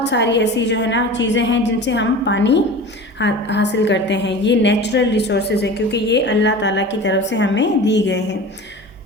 सारी ऐसी जो है ना चीज़ें हैं जिनसे हम पानी हासिल करते हैं। ये नेचुरल रिसोर्सेज हैं क्योंकि ये अल्लाह ताला की तरफ से हमें दी गए हैं।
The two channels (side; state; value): both; normal; correlation 0.36